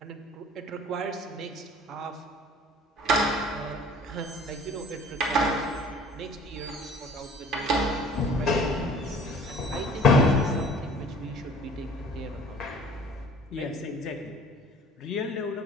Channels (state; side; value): normal; both; correlation 0.49